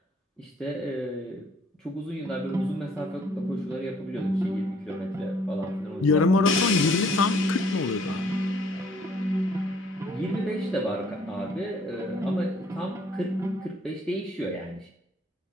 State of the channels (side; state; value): both; normal; correlation 0.61